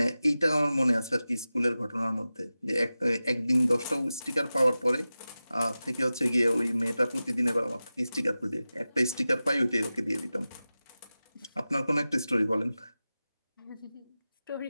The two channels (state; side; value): inverted; both; correlation -0.95